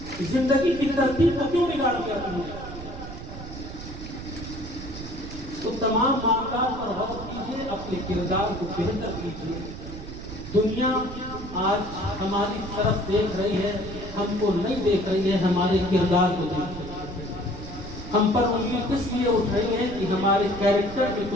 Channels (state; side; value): noise; right; rumble, 11 dB below the sound